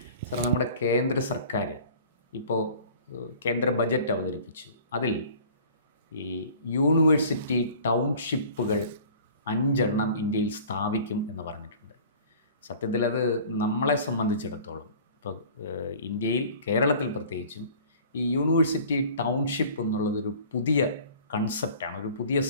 സർ, നമ്മുടെ കേന്ദ്ര സർക്കാർ ഇപ്പോൾ കേന്ദ്ര ബജറ്റ് അവതരിപ്പിച്ചു. അതിൽ ഈ യൂണിവേഴ്സിറ്റി ടൗൺഷിപ്പുകൾ 5 ഇന്ത്യയിൽ സ്ഥാപിക്കും എന്ന് പറഞ്ഞിട്ടുണ്ട്. സത്യത്തിൽ അത് നമ്മളെ സംബന്ധിച്ചിടത്തോളം ഇപ്പോൾ ഇന്ത്യയിൽ, കേരളത്തിൽ പ്രത്യേകിച്ചും, ഈ യൂണിവേഴ്സിറ്റി ടൗൺഷിപ്പ് എന്നുള്ളതൊരു പുതിയ കൺസെപ്റ്റാണ്, ഒരു പുതിയ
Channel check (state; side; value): inverted; both; correlation -0.46